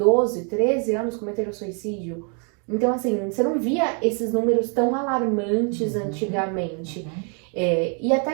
13 anos cometeram suicídio. Então, assim, você não via esses números tão alarmantes antigamente. E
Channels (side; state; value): left; quieter; 39.5 dB